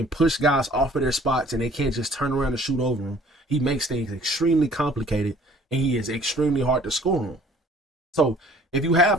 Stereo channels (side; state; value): both; normal; correlation 0.54